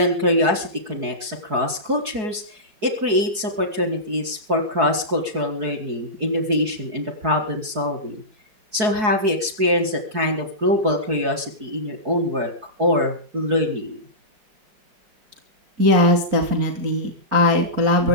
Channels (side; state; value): left; late; 4.7 ms